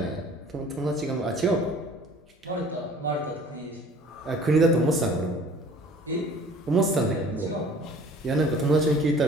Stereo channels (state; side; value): normal; both; correlation 0.50